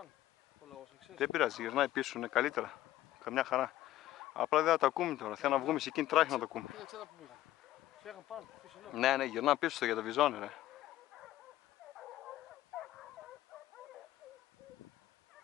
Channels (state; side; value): quieter; right; 14.4 dB